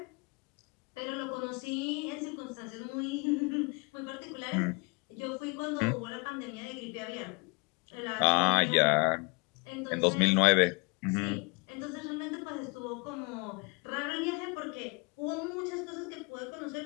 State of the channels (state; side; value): quieter; right; 30.8 dB